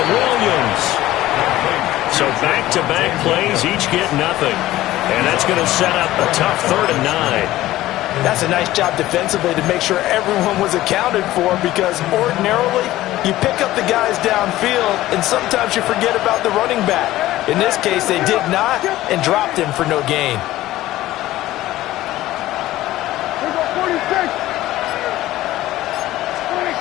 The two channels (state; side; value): quieter; right; 15.7 dB